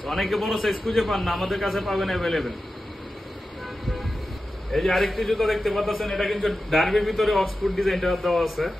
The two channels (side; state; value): both; normal; correlation 0.93